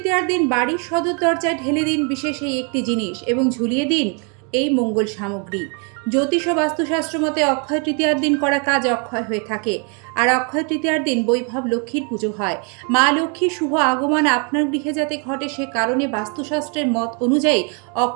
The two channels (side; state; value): left; quieter; 36.7 dB